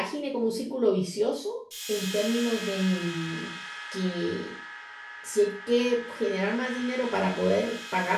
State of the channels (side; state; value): both; identical; correlation 1.00